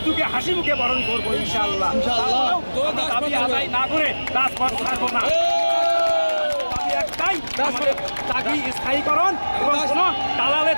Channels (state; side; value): inverted; both; correlation -1.00